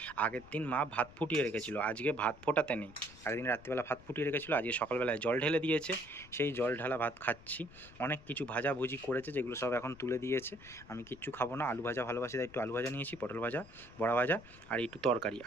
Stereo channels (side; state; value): left; noise; rumble, 21 dB below the sound